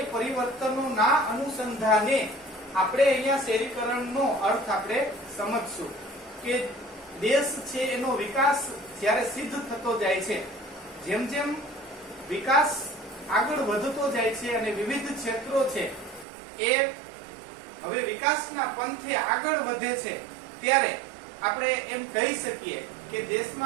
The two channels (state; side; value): drops out; left; at 16.2 s